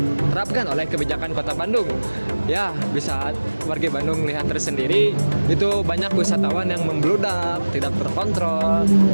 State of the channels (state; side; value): inverted; both; correlation -1.00